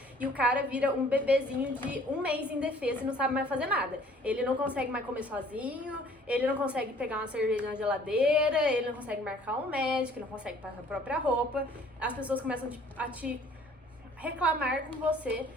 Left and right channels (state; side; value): normal; both; correlation 0.55